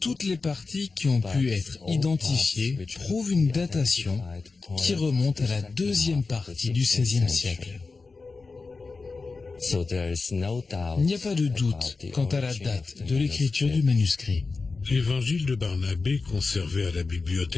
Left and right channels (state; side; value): quieter; right; 4.1 dB